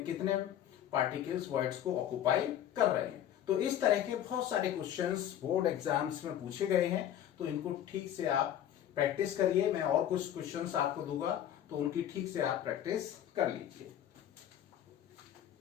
कितने पार्टिकल्स वॉइड्स को ऑक्यूपाई कर रहे हैं। तो इस तरह के बहुत सारे क्वेश्चंस बोर्ड एग्जाम्स में पूछे गए हैं। तो इनको ठीक से आप प्रैक्टिस करिए। मैं और कुछ क्वेश्चंस आपको दूंगा तो उनकी ठीक से आप प्रैक्टिस कर लीजिए।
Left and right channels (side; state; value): right; quieter; 10.8 dB